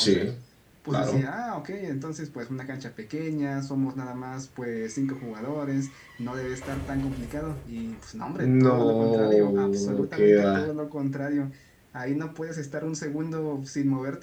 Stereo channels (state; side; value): identical; both; correlation 1.00